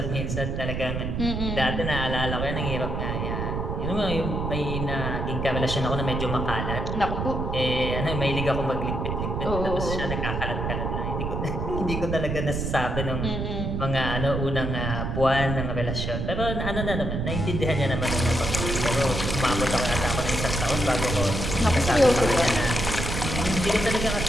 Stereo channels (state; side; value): noise; right; rumble, 2 dB below the sound